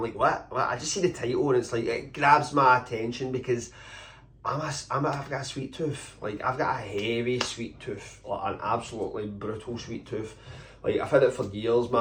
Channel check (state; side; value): identical; both; correlation 1.00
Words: like, what? I just see the title and it's like, it grabs my attention because I've got a sweet tooth. Like, I've got a heavy sweet tooth, like an absolutely brutal sweet tooth. Like, I've had it for years,